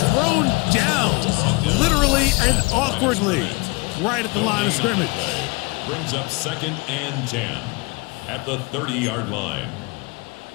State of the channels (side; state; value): right; quieter; 27.7 dB